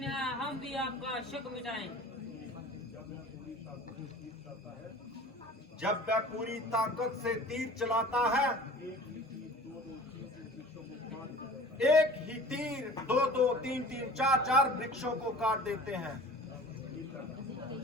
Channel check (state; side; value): normal; both; correlation 0.43